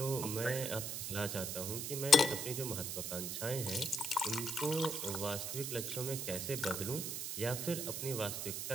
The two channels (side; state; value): right; noise; hiss, 3 dB below the sound